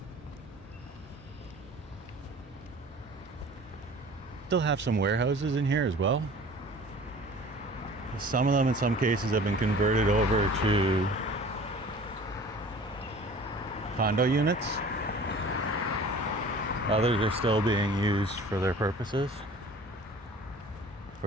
Still have some warehouses in here as well. Some of them in some cases have been converted over to condo units. Others are still being used for their purposes.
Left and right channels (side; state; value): both; normal; correlation 0.45